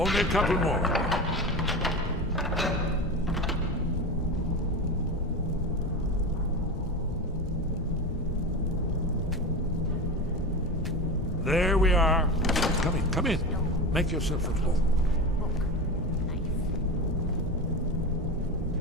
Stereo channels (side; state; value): both; normal; correlation 0.24